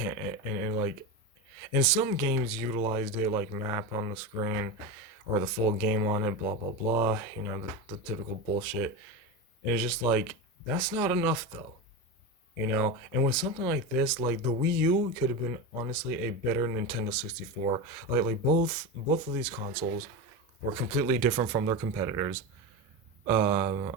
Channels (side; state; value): both; normal; correlation 0.20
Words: and some games utilized it like map on the screen or the full game on it, blah blah blah. The typical bullshit. And it's just like that's not enough though. And with something like this, like the Wii U could have been honestly a better Nintendo 64. Like both of these consoles were completely different from their competitors.